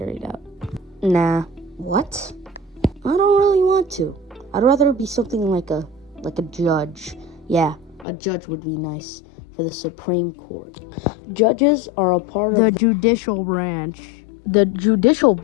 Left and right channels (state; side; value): drops out; right; at 8.1 s